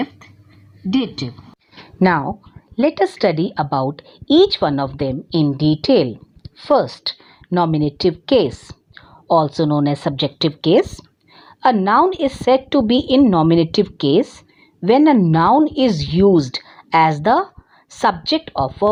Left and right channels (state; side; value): identical; both; correlation 1.00